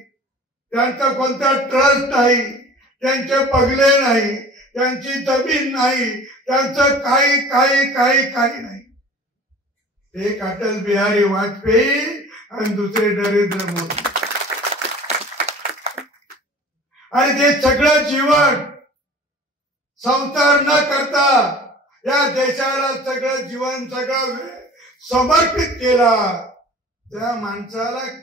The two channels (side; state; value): both; normal; correlation 0.44